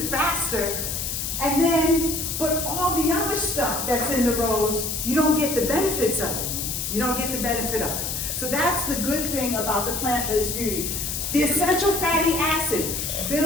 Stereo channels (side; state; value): left; noise; hiss, 3 dB below the sound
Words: faster. And then, but all the other stuff that's in the rose, you don't get the benefits of it. You don't get the benefit of it. So that's the good thing about the plant-based beauty. The essential fatty acid